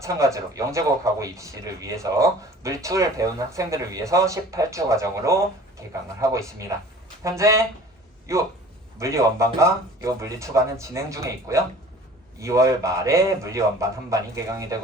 영재고 가고 입시를 위해서 물리2를 배우는 학생들을 위해서 18주 과정으로 개강을 하고 있습니다. 현재 요 물리 원반과 요 물리 2반은 진행 중에 있고요. 2월 말에 물리 원반 한 반이 개강이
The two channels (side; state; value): both; normal; correlation 0.47